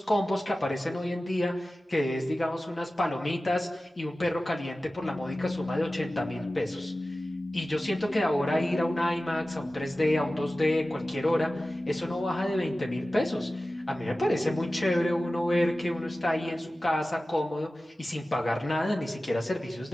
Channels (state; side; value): normal; both; correlation 0.96